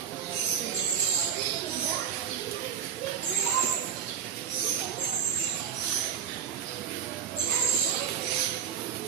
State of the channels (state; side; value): quieter; left; 8.2 dB